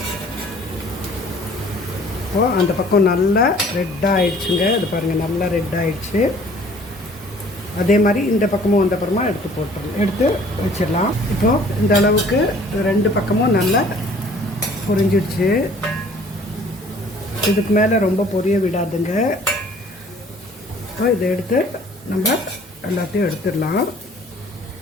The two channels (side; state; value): both; normal; correlation 0.54